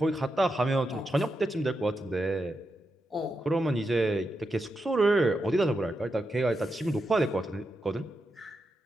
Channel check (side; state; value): both; normal; correlation 0.86